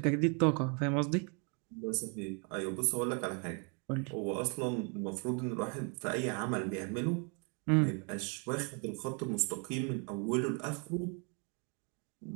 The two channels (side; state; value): left; quieter; 36.3 dB